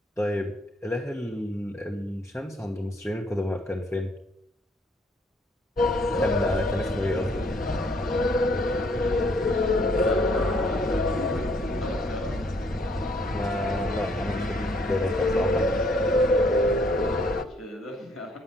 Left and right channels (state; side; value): normal; both; correlation 0.65